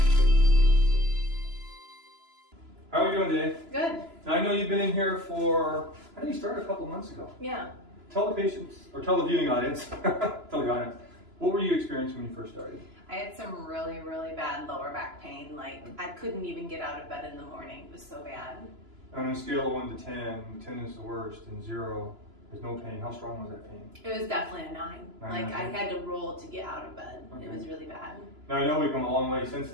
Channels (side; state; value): left; late; 3.0 ms